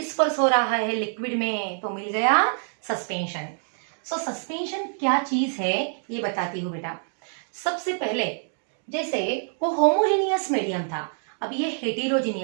हो रहा है लिक्विड में, तो मिल गया सस्पेंशन. सो सस्पेंशन क्या चीज है ये बताती हूँ बेटा. सबसे पहले जैसे वो होमोजेनियस मीडियम था, अब ये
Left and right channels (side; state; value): left; silent; 61 dB below the other